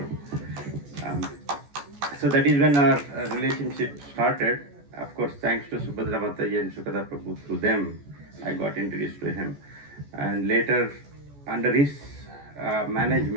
So that is when our relationship started. Of course, thanks to Subhadra Mataji and Sukada Prabhu, through them, I got introduced to him. And later, under his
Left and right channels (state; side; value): late; left; 14 ms